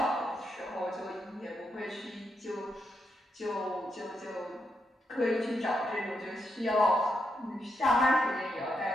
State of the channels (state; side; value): normal; both; correlation 0.83